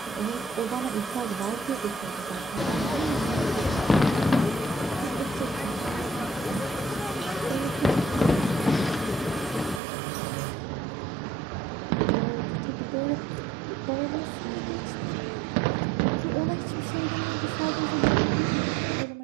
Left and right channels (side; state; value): left; drops out; at 9.8 s